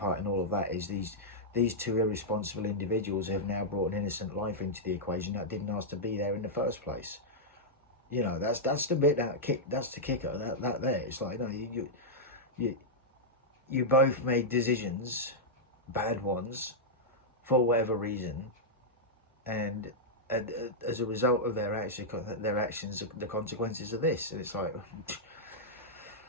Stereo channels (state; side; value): normal; both; correlation -0.07